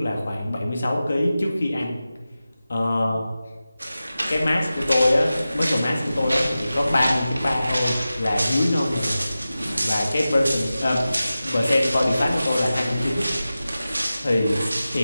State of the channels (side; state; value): both; inverted; correlation -0.95